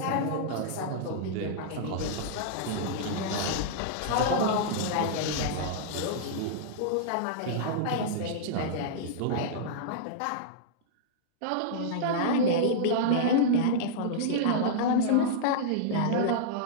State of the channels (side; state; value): both; different; correlation -0.02